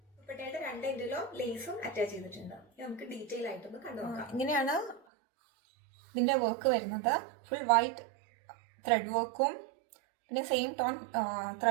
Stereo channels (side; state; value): left; drops out; at 5.0 s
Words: ദുപ്പട്ടയുടെ രണ്ട് എൻഡിലും ലേസും അറ്റാച്ച് ചെയ്തിട്ടുണ്ട്. നമുക്ക് ഡീറ്റെയിൽ ആയിട്ടൊന്ന് കണ്ടു നോക്കാം. ഇങ്ങനെയാണ് ഇതിന്റെ വർക്ക് വരുന്നത്. ഫുൾ വൈറ്റ് ത്രെഡ് വർക്കും പിന്നെ സെയിം ടോൺ